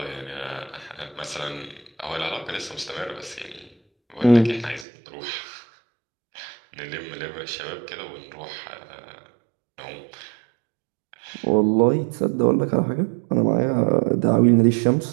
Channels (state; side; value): drops out; left; at 4.9 s